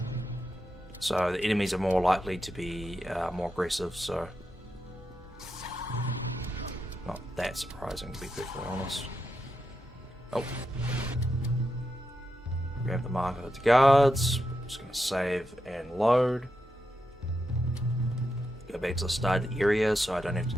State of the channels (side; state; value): both; normal; correlation 0.86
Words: So the enemies are more likely to be more aggressive, so not that surprising to be perfectly honest. Oh. Grab the marker of the guards. Just going to save and load. Go back to the start of the area so I don't have to